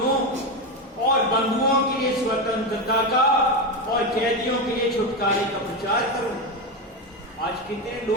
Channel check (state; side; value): normal; both; correlation 0.14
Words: और बंधुओं के लिए स्वतंत्रता का और कैदियों के लिए छुटकारे का प्रचार करूं। आज कितने